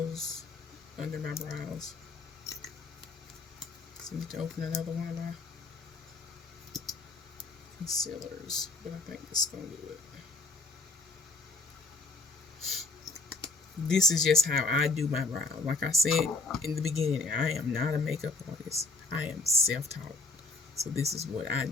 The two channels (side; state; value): right; quieter; 3.4 dB